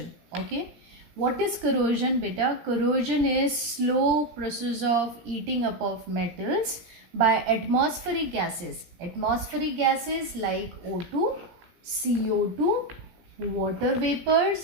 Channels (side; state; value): left; late; 17 ms